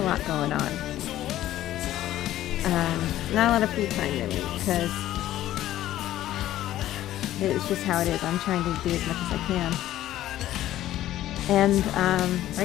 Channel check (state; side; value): quieter; right; 13.7 dB